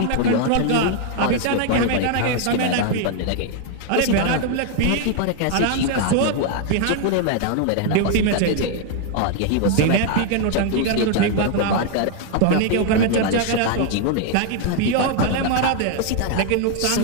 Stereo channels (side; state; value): both; different; correlation 0.00